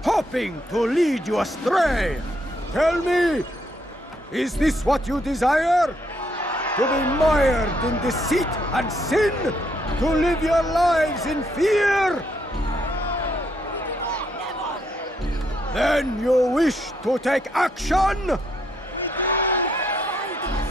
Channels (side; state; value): both; normal; correlation 0.74